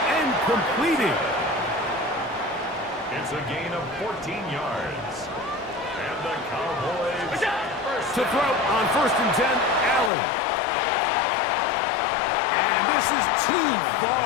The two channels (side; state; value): right; drops out; at 10.1 s